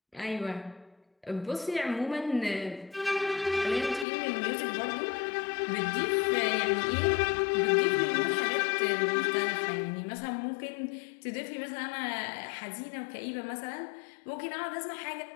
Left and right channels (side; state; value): right; drops out; at 4.0 s